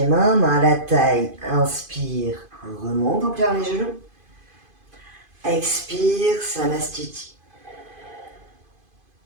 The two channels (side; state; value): left; late; 2.5 ms